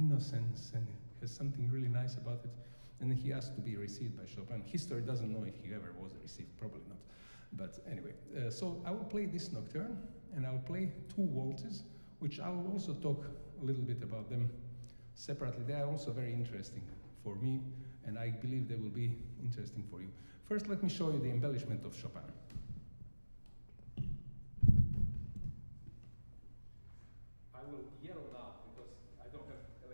and has something really nice about it. And then he asked to be received by Chopin. History doesn't know if he ever was received, probably not. But anyway, so I will play this nocturne, and I'll play 2 waltzes, which I'll also talk a little bit about them separately. They are also very interesting for me, and I believe they will be interesting for you. First, let me show you the embellishment of Chopin. I will yell now because I don't have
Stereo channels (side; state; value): both; inverted; correlation -1.00